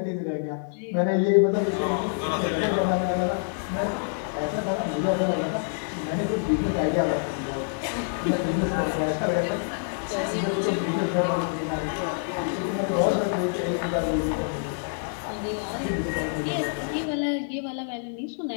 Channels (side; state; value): right; silent; 55 dB below the other